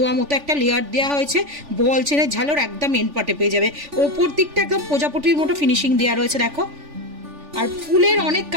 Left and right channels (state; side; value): late; left; 3.4 ms